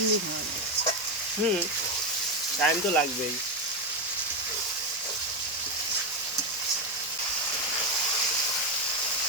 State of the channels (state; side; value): normal; both; correlation 0.10